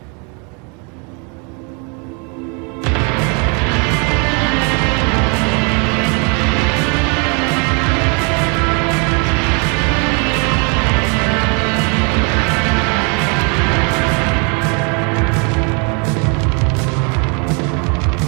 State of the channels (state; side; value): quieter; left; 34.3 dB